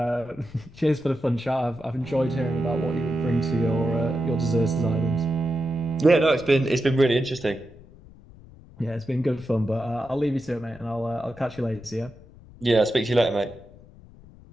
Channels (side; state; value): left; noise; rumble, 22 dB below the sound